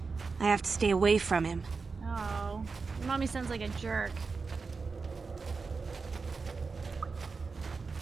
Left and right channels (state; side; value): quieter; left; 4.6 dB